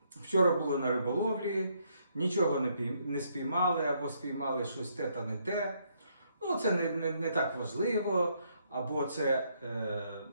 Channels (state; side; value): inverted; both; correlation -0.73